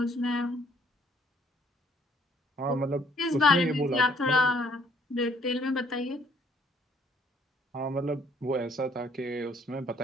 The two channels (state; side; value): normal; both; correlation 0.64